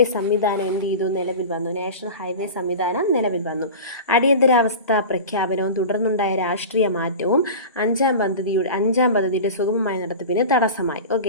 സംവിധാനം എന്ത് ചെയ്തു? നിലവിൽ വന്നു. നാഷണൽ ഹൈവേ സംവിധാനം നിലവിൽ വന്നു. അടിയന്തരാവസ്ഥ പ്രഖ്യാപനവും തുടർന്നുണ്ടായ രാഷ്ട്രീയ മാറ്റവും 5ാം പദ്ധതിയുടെ സുഗമമായ നടത്തിപ്പിന് തടസ്സമായി.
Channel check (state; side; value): inverted; both; correlation -0.32